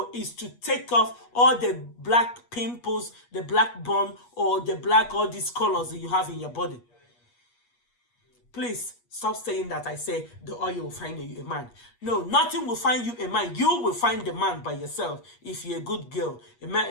is to take off all the black pimples, the black bone, or the black, all these colors that you have in your body. Please stop saying that I say the oil will find you a man. No, nothing will find you a man. You will find the man by yourself. If you're a good girl, a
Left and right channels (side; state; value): right; late; 8.4 ms